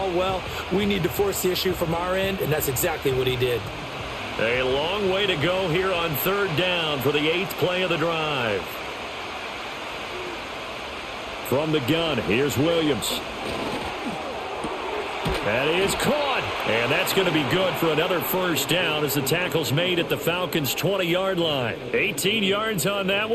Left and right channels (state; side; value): identical; both; correlation 1.00